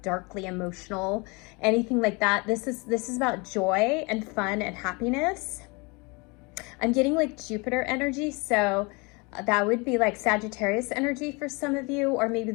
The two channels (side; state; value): right; quieter; 28.6 dB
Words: darkly emotional, anything like that. This is about joy and fun and happiness. I'm getting like Jupiter energy, so that would be like Sagittarius energy for some of you, or maybe